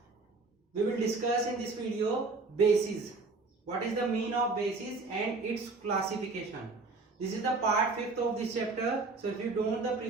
We will discuss in this video bases. What is the meaning of bases and its classification. This is the part 5th of this chapter. So if you don't know the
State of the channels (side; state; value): left; quieter; 3.8 dB